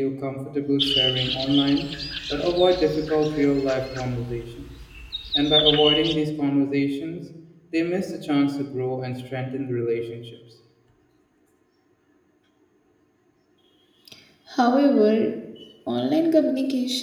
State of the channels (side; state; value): both; identical; correlation 1.00